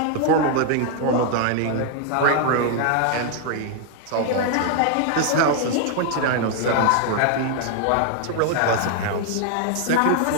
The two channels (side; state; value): both; different; correlation 0.00